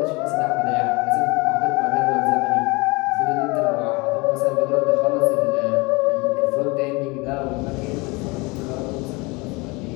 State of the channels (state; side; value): quieter; right; 25.7 dB